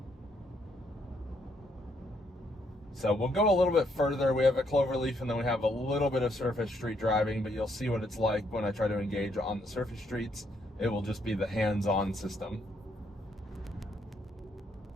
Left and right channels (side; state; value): both; normal; correlation 0.73